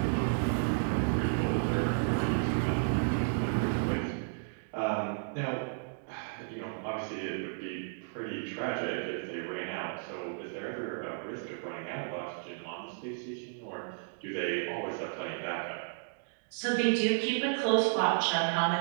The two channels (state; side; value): silent; left; digital silence